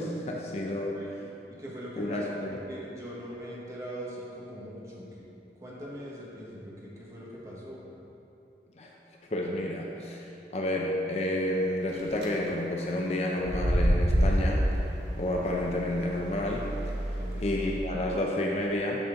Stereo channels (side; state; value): both; normal; correlation 0.70